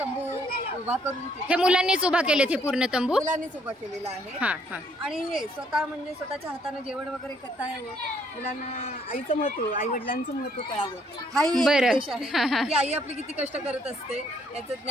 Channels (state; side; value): normal; both; correlation 0.67